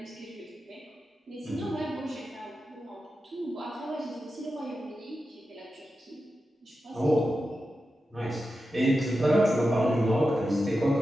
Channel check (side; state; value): both; normal; correlation 0.91